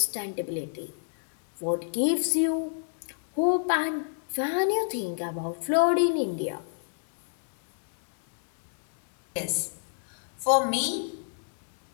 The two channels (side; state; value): right; silent; digital silence